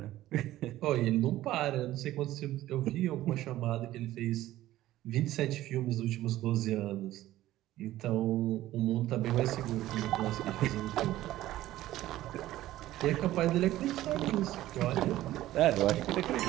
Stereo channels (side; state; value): left; quieter; 14.9 dB